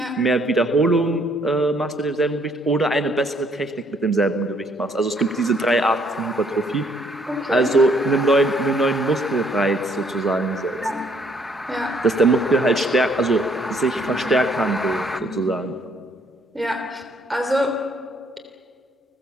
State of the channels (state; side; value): normal; both; correlation 0.66